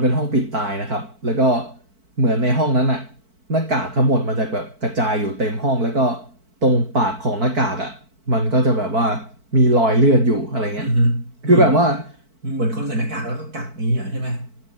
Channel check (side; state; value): left; late; 4.5 ms